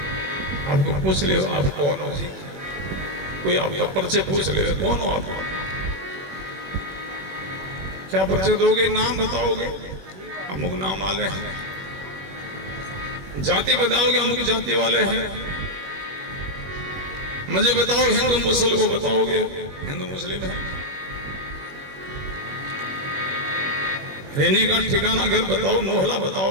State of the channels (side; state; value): left; late; 21 ms